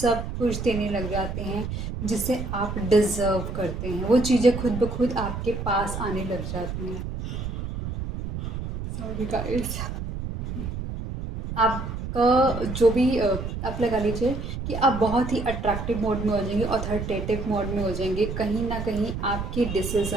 कुछ देने लग जाते हैं जिसे आप डिज़र्व करते हैं। वो चीज़ें खुद ब खुद आपके पास आने लग जाती हैं। सॉरी गाइस, आपका जो भी आप लगा लीजिए कि आप बहुत ही अट्रैक्टिव मोड में हो जाएंगे, अथॉरिटेटिव मोड में हो जाएंगे। कहीं ना कहीं आपके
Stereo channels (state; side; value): noise; right; rumble, 6 dB below the sound